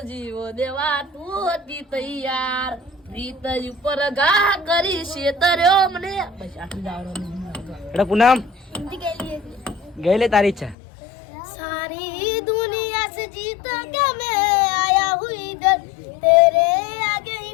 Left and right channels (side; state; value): right; drops out; at 10.8 s